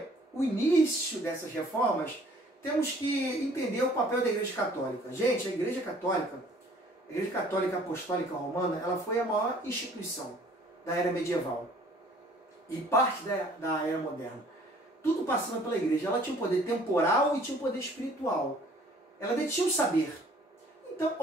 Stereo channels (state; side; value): normal; both; correlation 0.55